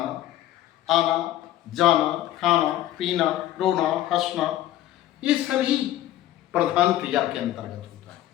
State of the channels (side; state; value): right; quieter; 13.6 dB